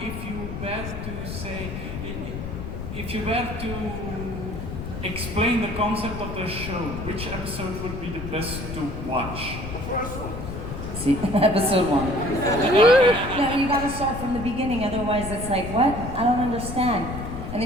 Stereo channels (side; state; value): left; noise; rumble, 7 dB below the sound